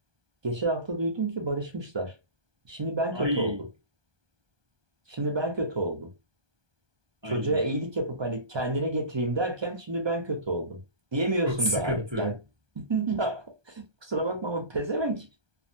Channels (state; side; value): late; left; 1.2 ms